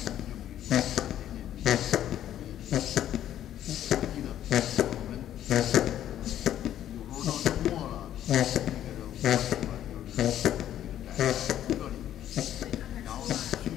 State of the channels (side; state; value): right; quieter; 11.5 dB